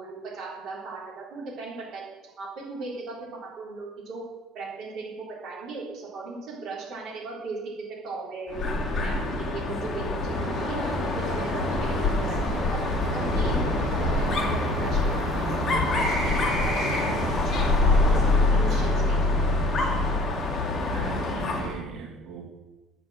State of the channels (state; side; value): normal; both; correlation 0.51